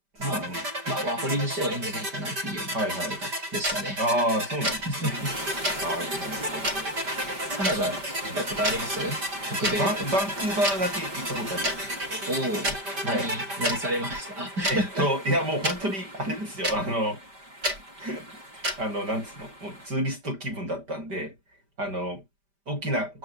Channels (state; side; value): late; left; 5.1 ms